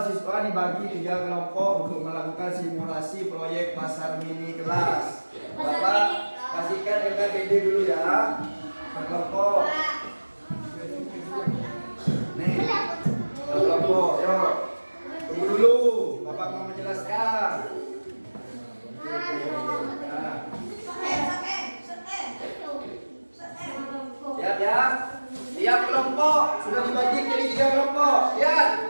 siswa dibagi 3 kelompok untuk melakukan simulasi proyek pasar mini kelas. Bapak kasihkan LKPD dulu ya. Kelompok. Nih. Kelompok, yuk. Tunggu dulu, Bapak mau menjelaskan. Siap ya. Tiap kelompok sudah dibagi jadi 3 kelompok. Lihat.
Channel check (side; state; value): both; inverted; correlation -1.00